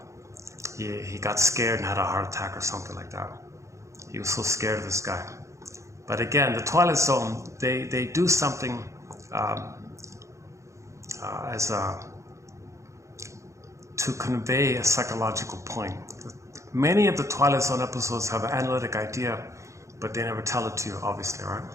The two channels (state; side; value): late; left; 0.15 ms